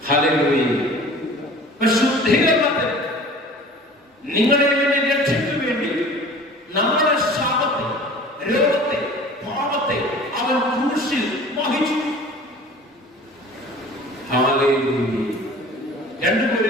ഹല്ലേലൂയ. ശുദ്ധീകരണത്തിന് നിങ്ങളുടെ രക്ഷയ്ക്ക് വേണ്ടി നമ്മുടെ ശാപത്തെ, രോഗത്തെ, പാപത്തെ അവൻ ക്രൂശിൽ വഹിച്ചു. ഹല്ലേലൂയ. 2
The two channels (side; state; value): both; normal; correlation 0.44